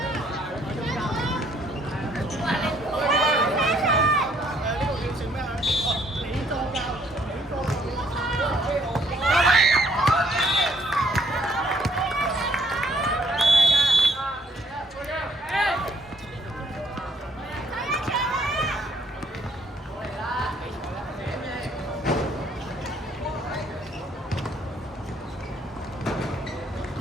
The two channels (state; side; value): normal; both; correlation 0.65